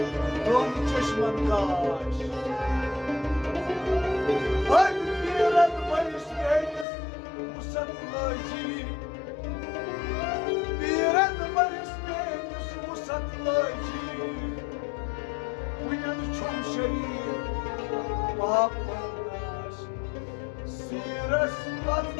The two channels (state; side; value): drops out; right; at 6.9 s